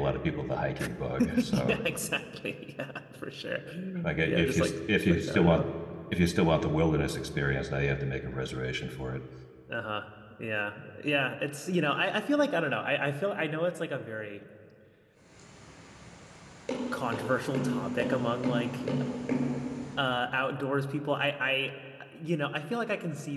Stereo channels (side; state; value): both; identical; correlation 1.00